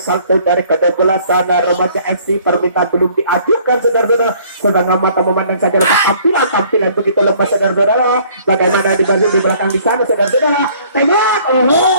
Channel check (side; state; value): both; inverted; correlation -0.57